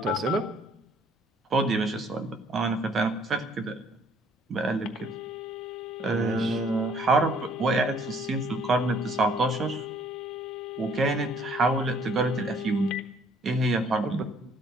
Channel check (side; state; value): both; normal; correlation 0.61